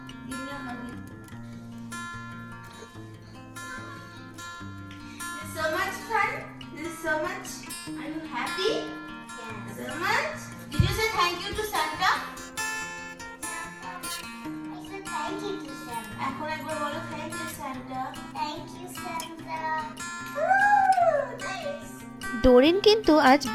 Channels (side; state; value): both; identical; correlation 1.00